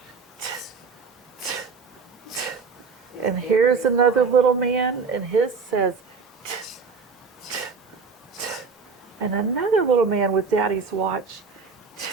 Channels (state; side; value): quieter; left; 5.0 dB